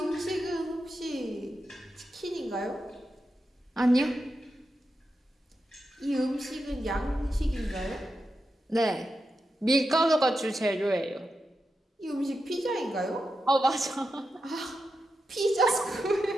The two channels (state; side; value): normal; both; correlation 0.88